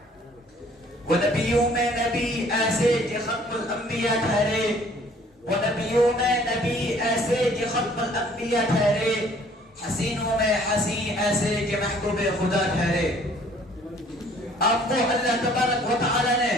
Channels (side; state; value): both; normal; correlation 0.57